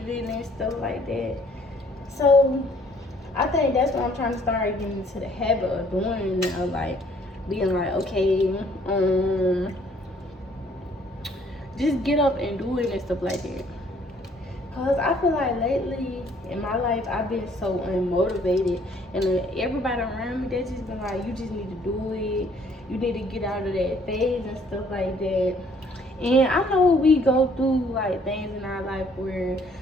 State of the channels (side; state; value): both; normal; correlation 0.61